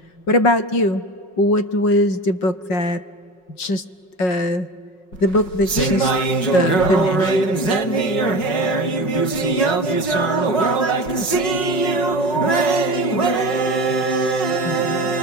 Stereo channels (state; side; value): late; right; 5.4 ms